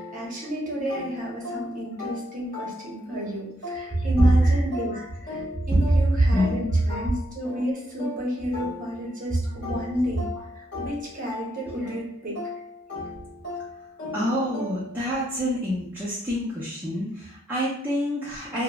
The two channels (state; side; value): normal; both; correlation 0.77